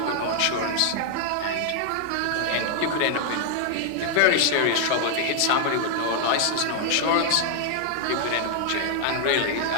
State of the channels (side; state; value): both; different; correlation 0.00